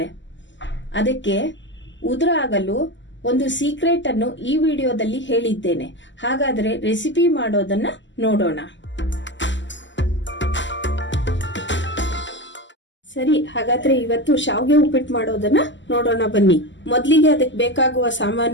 ಅದಕ್ಕೆ ಉದುರಾಗಲು ಒಂದು ಸೀಕ್ರೆಟ್ ಅನ್ನು ಈ ವಿಡಿಯೋದಲ್ಲಿ ಹೇಳಿದ್ದೇನೆ. ಹಾಗಾದ್ರೆ ರೆಸಿಪಿ ಮಾಡೋದನ್ನ ನೋಡೋಣ. ಸರಿ, ಹಾಗಾದ್ರೆ ಇವತ್ತು ಶಾವಿಗೆ ಉಪ್ಪಿಟ್ಟು ಮಾಡೋದನ್ನ ನೋಡೋಣ ಬನ್ನಿ. ಮೊದಲಿಗೆ ಅದಕ್ಕೆ ಬೇಕಾಗುವ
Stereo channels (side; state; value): right; late; 0.54 ms